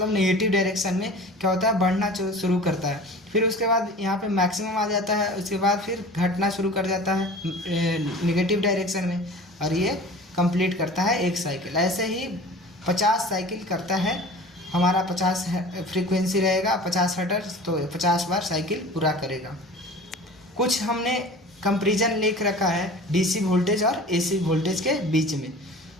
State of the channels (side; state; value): both; normal; correlation 0.40